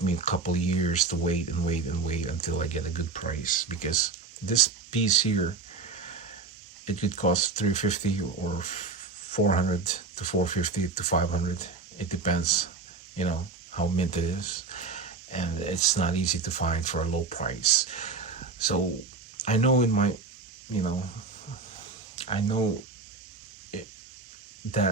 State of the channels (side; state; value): left; quieter; 4.4 dB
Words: me a couple of years to wait and wait and wait until I get a good price, because this piece here, it could cost 350 or 400 to 450 to 500. It depends, how mint it is, and it's not easy to find for a low price. So I know in my, you know, I know it,